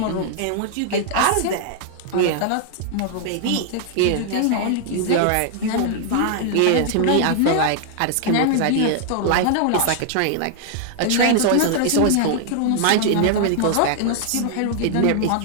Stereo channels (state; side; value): different; both; correlation 0.00